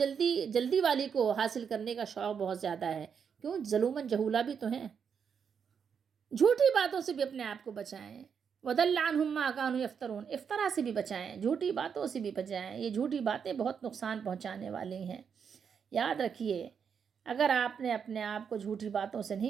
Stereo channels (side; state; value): left; quieter; 6.9 dB